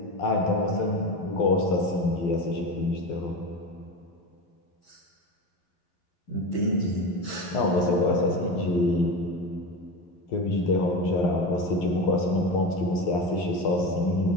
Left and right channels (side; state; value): right; late; 11 ms